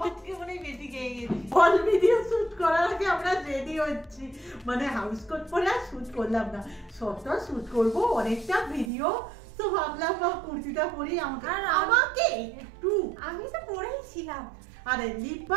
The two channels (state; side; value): drops out; left; at 8.9 s